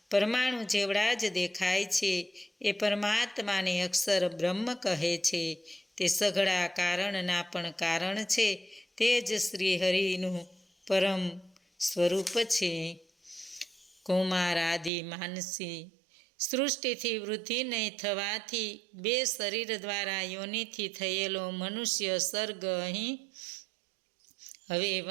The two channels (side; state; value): left; drops out; at 14.9 s